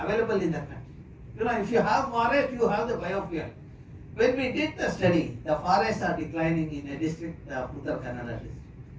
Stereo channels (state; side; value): identical; both; correlation 1.00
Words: in the country. If you have forest, you have the biofuel. When we did the study, the forests are declining in a district, Uttar Kannada district.